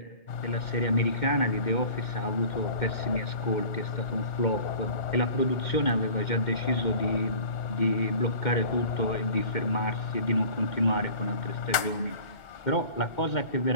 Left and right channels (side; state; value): right; late; 2.8 ms